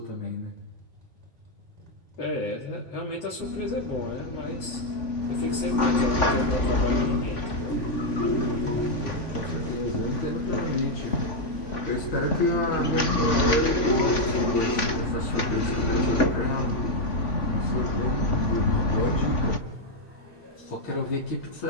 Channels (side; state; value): right; late; 3.5 ms